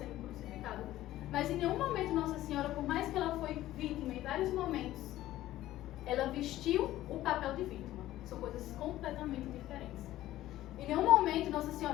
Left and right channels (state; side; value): quieter; right; 14.7 dB